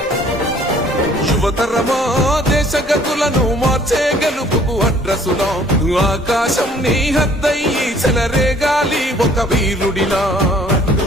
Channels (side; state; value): both; normal; correlation 0.57